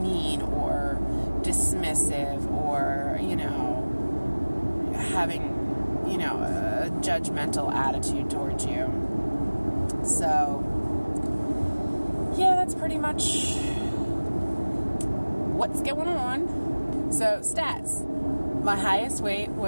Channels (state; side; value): inverted; both; correlation -1.00